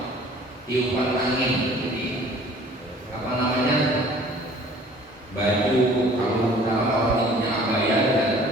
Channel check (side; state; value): both; normal; correlation 0.51